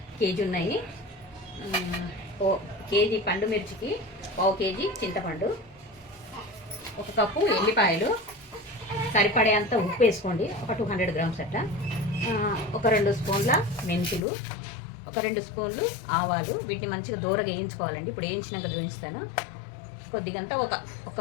కేజీ ఉన్నాయి. కేజీ పండు మిర్చికి 1/2 కేజీ చింతపండు, 1 కప్పు ఎల్లిపాయలు, సరిపడేంత ఉప్పు వేసుకోండి, ఒక 200 గ్రామ్స్ అట్లా, ఒక 2 స్పూన్ల మెంతులు, ఒక 2 స్పూన్లు ఆవాలు. వీటిని మంచిగా దూరగా వేయించుకోవాలండి. ఇప్పుడు వేయించినాక చూపిస్తాను. కొద్దిగంతా ఒక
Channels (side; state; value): right; drops out; at 14.2 s